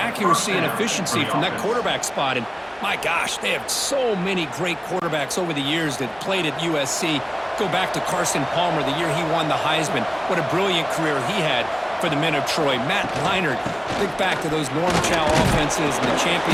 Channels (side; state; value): both; identical; correlation 1.00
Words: and efficiency from that quarterback spot. And my gosh, they have so many great quarterbacks over the years that played at USC. Go back to Carson Palmer, the year he won the Heisman. What a brilliant career he had for the men of Troy. Matt Leinart, think back to those Norm Chow offenses and the